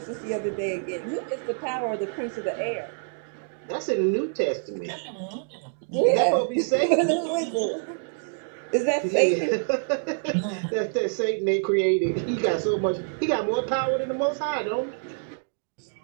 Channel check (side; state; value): left; silent; digital silence